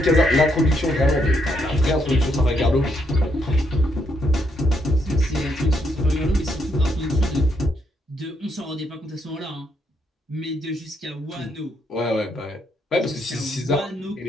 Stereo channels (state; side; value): normal; both; correlation 0.76